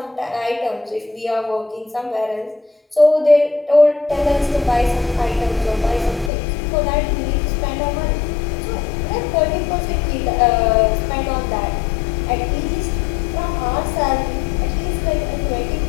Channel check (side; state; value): right; drops out; at 6.3 s